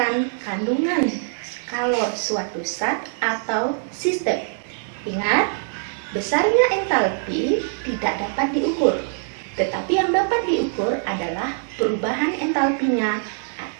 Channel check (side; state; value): left; silent; 63 dB below the other